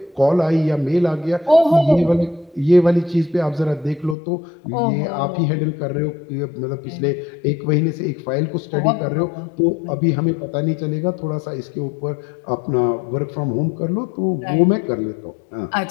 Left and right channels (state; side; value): drops out; right; at 4.2 s